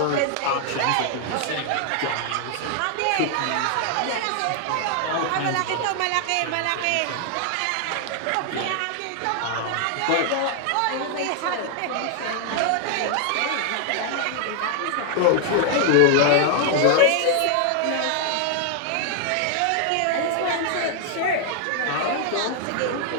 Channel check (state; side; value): different; both; correlation 0.00